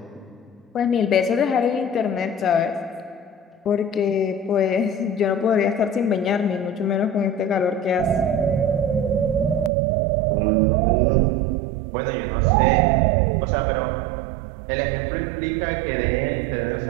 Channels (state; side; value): drops out; left; at 9.7 s